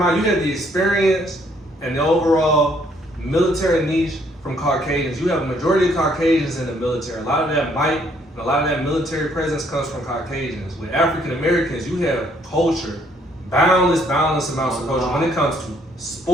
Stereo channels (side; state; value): both; normal; correlation 0.67